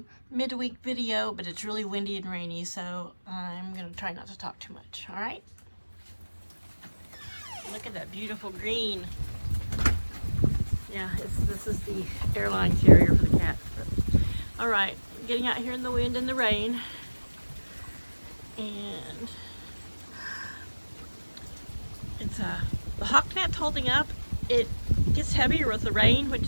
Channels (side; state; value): both; inverted; correlation -1.00